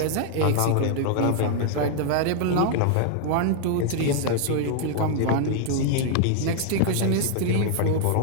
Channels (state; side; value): different; both; correlation 0.00